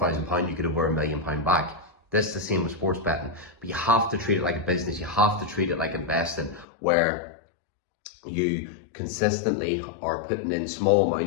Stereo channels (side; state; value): right; drops out; at 6.7 s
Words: pounds, you get over £1 million back. This is the same with sports betting, but you have to treat it like a business. You have to treat it like investing, where you consistently are putting in small